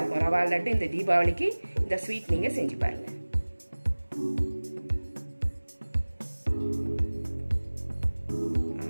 இருக்கும் ரவா லட்டு. இந்த தீபாவளிக்கு இந்த ஸ்வீட் நீங்கள் செஞ்சு பாருங்கள்.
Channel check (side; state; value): both; inverted; correlation -1.00